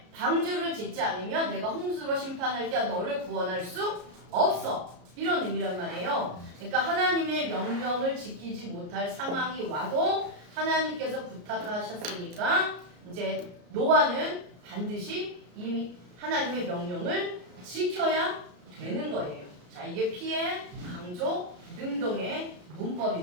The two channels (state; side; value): late; left; 34 ms